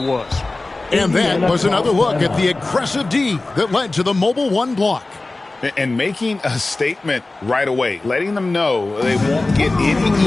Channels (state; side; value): quieter; right; 3.1 dB